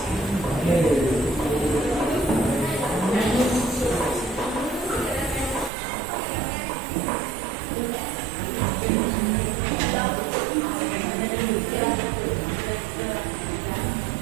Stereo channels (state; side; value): drops out; left; at 5.7 s